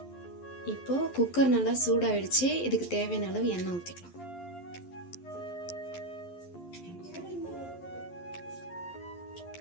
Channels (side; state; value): right; late; 11 ms